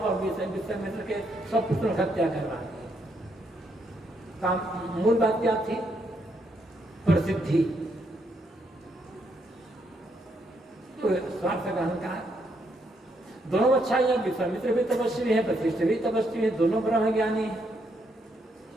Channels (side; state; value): both; normal; correlation 0.76